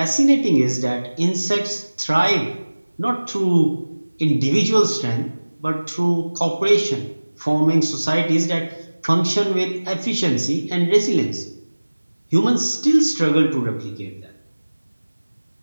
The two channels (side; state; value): both; inverted; correlation -1.00